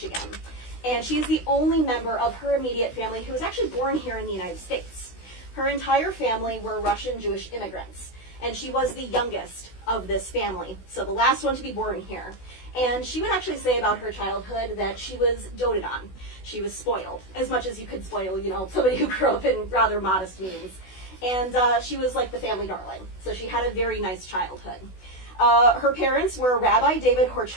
And she's the only member of her immediate family who was actually born here in the United States. Her entire family were Russian Jewish immigrants, and she was the youngest of this family, so the last one to be born here. And she would actually say about her childhood that she was doted on. She was spoiled, as much as you could spoil, somebody who grew up in rather modest means. And she was like the family darling, so she had a very nice childhood. Her parents were Rabbi David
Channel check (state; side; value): late; right; 16 ms